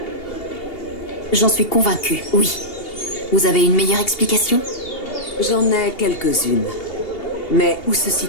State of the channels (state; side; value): late; right; 2.8 ms